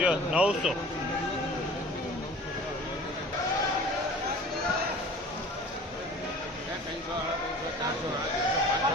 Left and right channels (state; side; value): normal; both; correlation 0.44